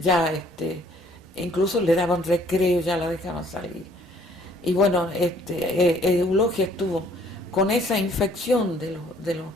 incluso le daban recreo, ya la dejaban salir. Y bueno, Eulogia estuvo con esa infección de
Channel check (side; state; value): both; normal; correlation 0.60